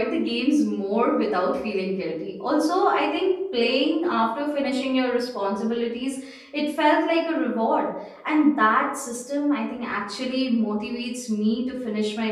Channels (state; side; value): identical; both; correlation 1.00